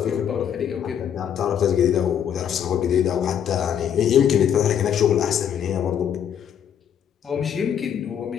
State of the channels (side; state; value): right; quieter; 8.9 dB